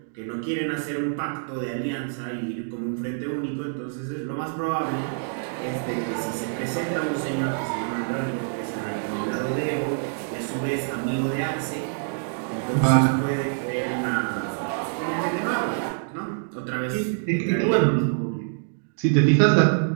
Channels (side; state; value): left; silent; digital silence